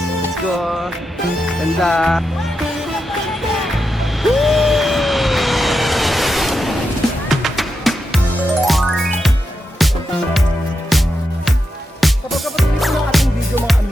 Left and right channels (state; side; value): normal; both; correlation 0.87